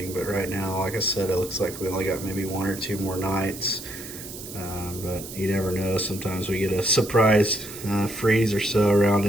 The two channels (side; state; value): right; noise; hiss, 12 dB below the sound